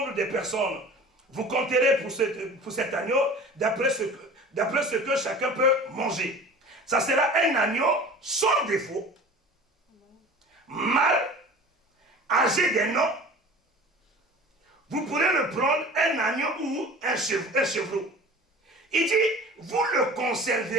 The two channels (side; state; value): both; normal; correlation 0.40